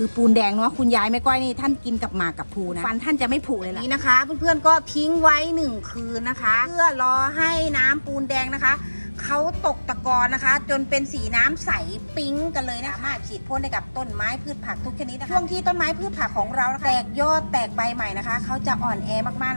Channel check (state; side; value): inverted; both; correlation -1.00